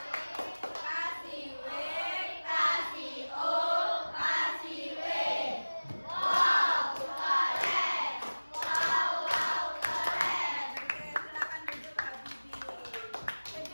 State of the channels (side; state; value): both; inverted; correlation -1.00